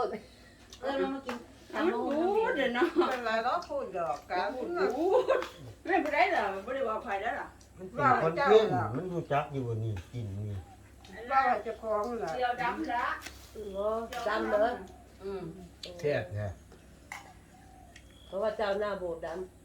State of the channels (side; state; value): both; identical; correlation 1.00